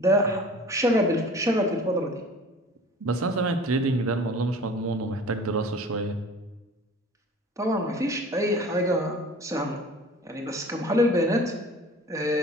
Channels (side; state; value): both; normal; correlation 0.43